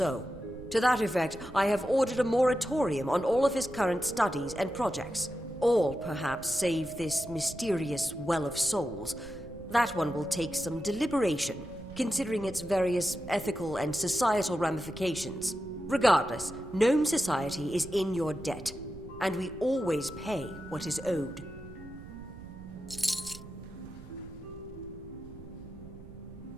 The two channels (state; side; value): noise; right; rumble, 16 dB below the sound